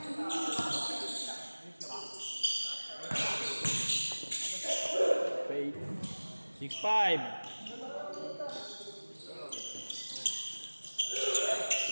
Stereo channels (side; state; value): both; inverted; correlation -1.00